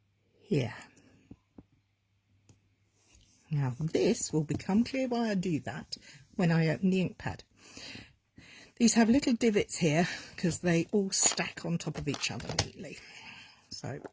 here. Now this will become clear why I do that when I open the ink pad. These have little divots here because they all stack on top of each other neatly. So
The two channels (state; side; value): identical; both; correlation 1.00